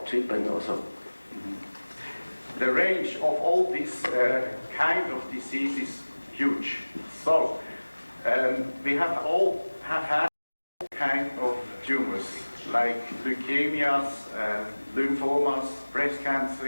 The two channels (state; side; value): inverted; both; correlation -1.00